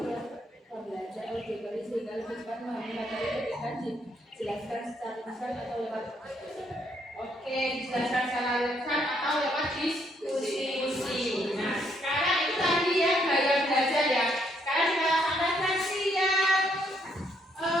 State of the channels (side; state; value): both; normal; correlation 0.72